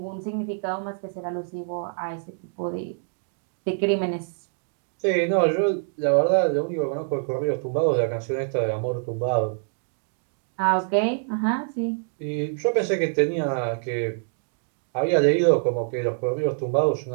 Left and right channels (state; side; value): silent; left; digital silence